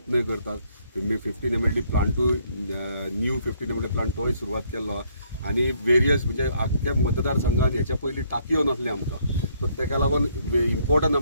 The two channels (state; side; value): inverted; both; correlation -0.68